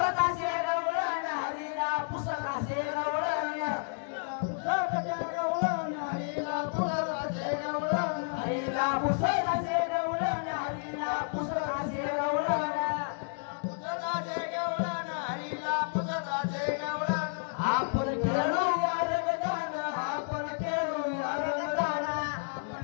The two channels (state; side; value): silent; right; digital silence